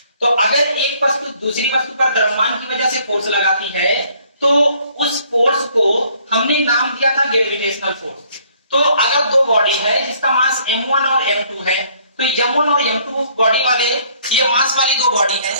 तो अगर एक वस्तु दूसरी वस्तु पर द्रव्यमान की वजह से फोर्स लगाती है तो उस फोर्स को हमने नाम दिया था ग्रेविटेशनल फोर्स। तो अगर दो बॉडी है जिसका मास m1 और m2 है तो m1 और m2 बॉडी वाले ये मास वाली दो बॉडी है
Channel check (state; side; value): inverted; both; correlation -0.62